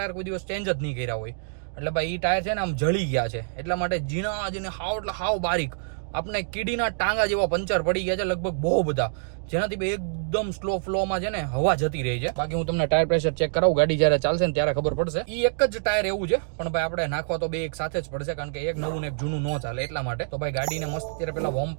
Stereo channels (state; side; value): silent; left; digital silence